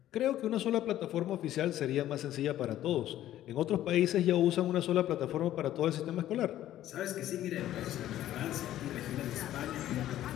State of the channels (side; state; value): right; quieter; 13.0 dB